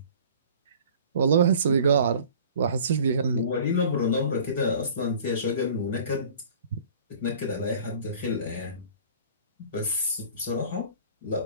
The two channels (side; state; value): both; inverted; correlation -0.46